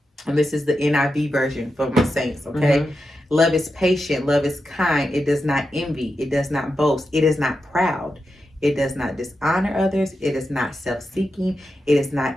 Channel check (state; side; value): normal; both; correlation 0.89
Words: and this is the NIV version for my saints. Okay. Love is patient, love is kind, it does not envy, it does not boast, it is not proud. It does not dishonor others. It is not self-seeking. It is not